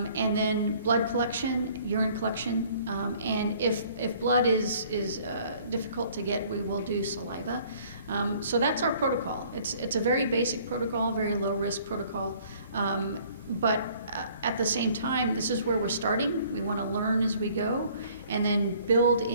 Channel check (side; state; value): both; inverted; correlation -0.57